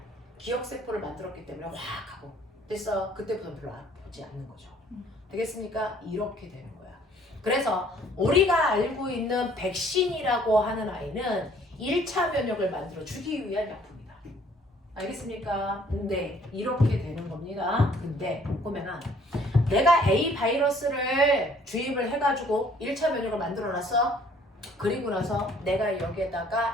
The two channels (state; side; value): normal; both; correlation 0.59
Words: 기억세포를 만들었기 때문에 확 하고 됐어. 그때부터는 별로 아프지 않는 거죠. 되겠습니까? 이렇게 되는 거야. 그래서 우리가 알고 있는 백신이라고 하는 아이는 1차 면역을 만들어 주기 위한 약품이다. 알겠습니까? 네, 이렇게 되는 겁니다. 근데 보면은 내가 A 바이러스를 주입을 해가지고 1차 면역을 만들어놨어. 그리고 나서 내가